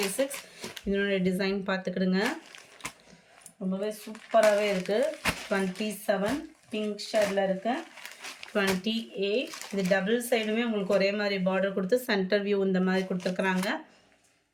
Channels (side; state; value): both; identical; correlation 1.00